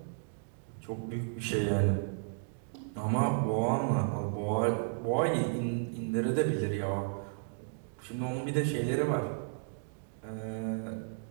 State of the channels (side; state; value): left; silent; digital silence